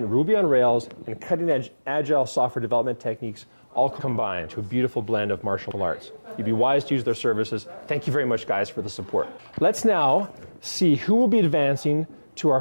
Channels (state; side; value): inverted; both; correlation -1.00